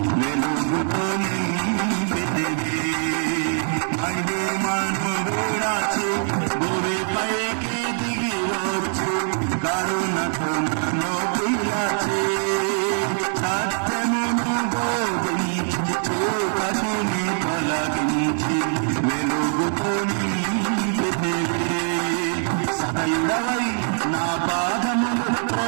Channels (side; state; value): left; silent; 57 dB below the other